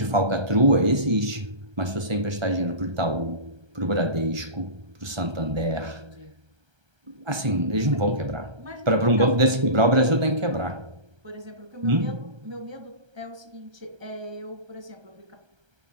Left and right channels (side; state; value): left; late; 1.3 ms